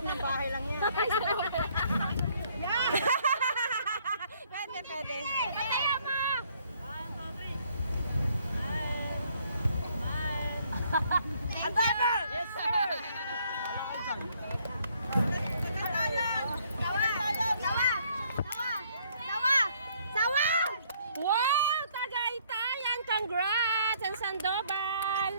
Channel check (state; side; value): inverted; both; correlation -0.65